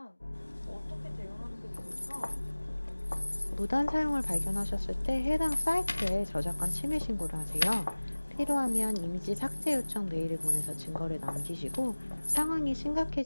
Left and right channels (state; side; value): inverted; both; correlation -1.00